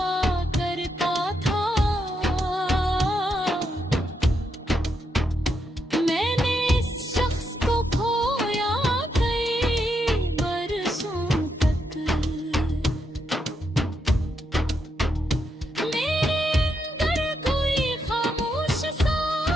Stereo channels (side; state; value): both; normal; correlation 0.81